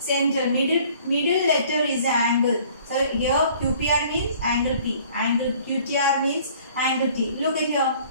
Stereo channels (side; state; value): both; inverted; correlation -0.54